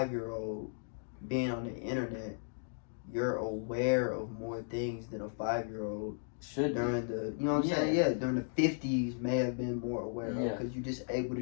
being on the internet you're aware of more things than a 5-year-old should during the, you know what I'm saying? Yeah, during the 50s may have been more aware of, because you're just able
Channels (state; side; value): silent; right; digital silence